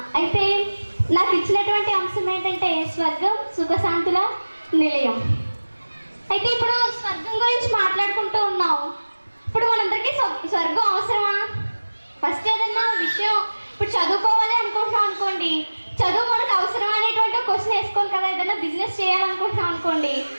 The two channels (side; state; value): both; inverted; correlation -1.00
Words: అయితే నాకు ఇచ్చినటువంటి అంశం ఏంటంటే స్వర్గం సుఖశాంతుల నిలయం. అయితే ఇప్పుడు స్వర్గం గురించి మాట్లాడుకుంటూ ఉన్నాం. ఇప్పుడు మనందరికీ స్వర్గం అవసరమా? ఫస్ట్ ఏదన్నా విషయం ఇప్పుడు చదువుకోవాలి అనుకుంటున్నాం అనుకోండి, చదువు మనకు అవసరం అనేటువంటి క్వశ్చన్ వేసుకోవాలి కదా. ఏదైనా బిజినెస్ చేయాలనుకుంటున్నాం అనుకోండి,